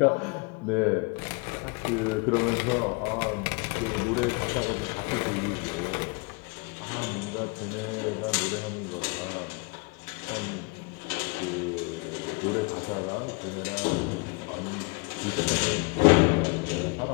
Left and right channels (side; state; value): right; quieter; 30.5 dB